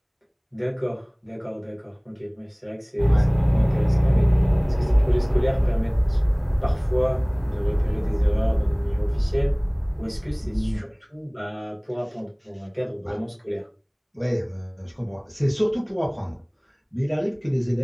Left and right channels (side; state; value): both; identical; correlation 1.00